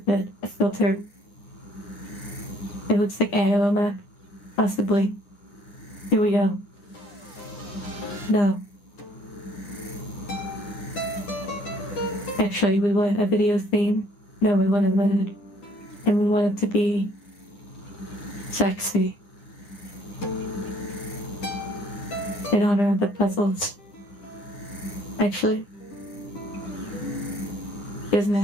a filter. It looks like Aoma, possibly. Here we go. No. Actually, we want a video theme. No, we want a mood. And we want it to be sexy. In honor of the puzzles. Actually, doesn't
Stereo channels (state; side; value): late; right; 9.9 ms